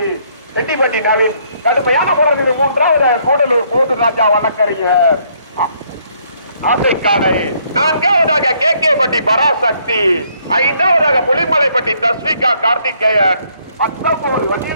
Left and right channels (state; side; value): inverted; both; correlation -0.67